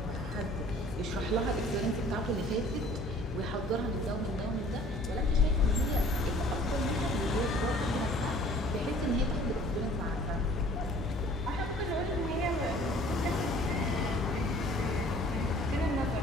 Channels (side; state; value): both; normal; correlation 0.52